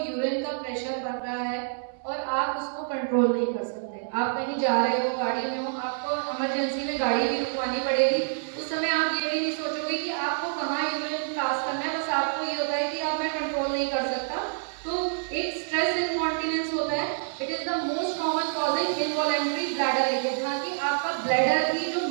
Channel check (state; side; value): silent; left; 60 dB below the other